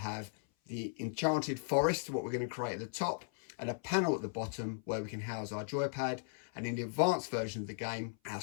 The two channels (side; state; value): right; silent; 53 dB below the other